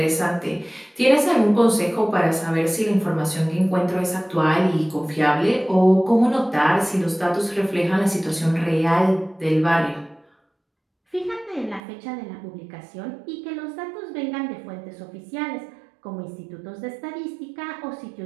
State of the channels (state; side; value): drops out; left; at 11.8 s